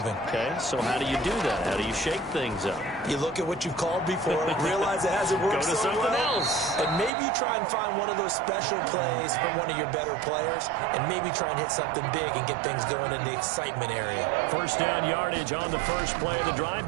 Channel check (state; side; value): drops out; left; at 7.1 s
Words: Okay, so how do you do that? How do you shake things up? You look at what you've called before, realize it hasn't worked Go to so something well, else. and maybe you try and find one of those special plays from one of your better players, and maybe try and hit something big and get things going in the excitement area. First down yardage on the first play of the drive.